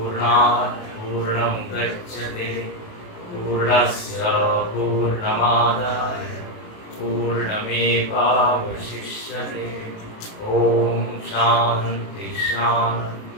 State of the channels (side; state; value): right; late; 28 ms